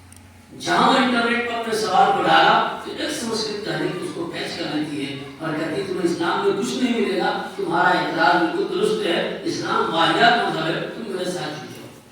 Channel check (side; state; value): both; identical; correlation 1.00